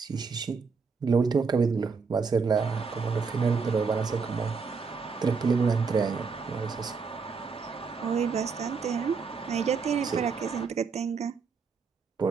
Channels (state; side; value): quieter; left; 5.1 dB